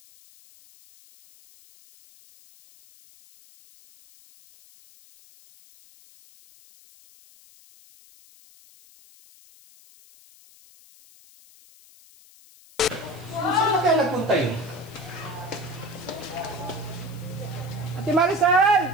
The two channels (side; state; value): left; noise; hiss, 25 dB below the sound